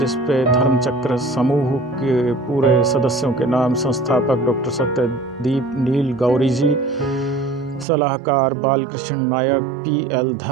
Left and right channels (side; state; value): left; drops out; at 7.9 s